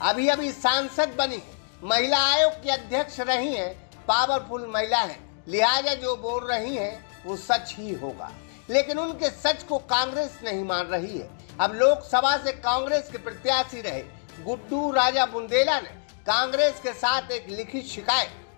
अभी अभी सांसद बनी है, महिला आयोग की अध्यक्ष रही है, पावरफुल महिला है, लिहाजा जो बोल रही हैं वो सच ही होगा। लेकिन उनके सच को कांग्रेस नहीं मान रही है। अब लोकसभा से कांग्रेस के प्रत्याशी रहे गुड्डू राजा बुंदेला ने कांग्रेस के साथ एक लिखित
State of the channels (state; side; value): silent; right; digital silence